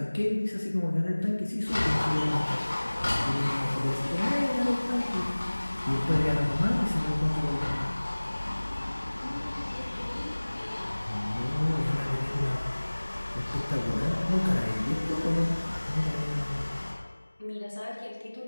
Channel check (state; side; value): inverted; both; correlation -1.00